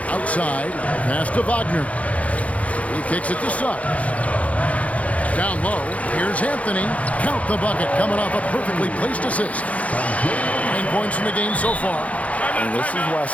outside, pass to Wagner. He kicks it to Suggs. Down low, here's Anthony. Count the bucket, coming off a perfectly placed assist. 9 points in the game so far. And this is why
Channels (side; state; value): right; late; 0.066 ms